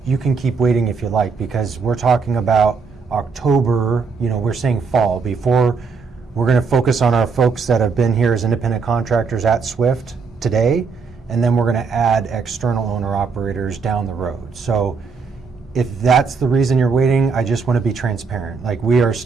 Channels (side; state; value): left; quieter; 5.1 dB